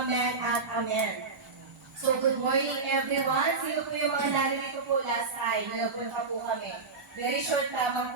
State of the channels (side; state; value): left; quieter; 4.3 dB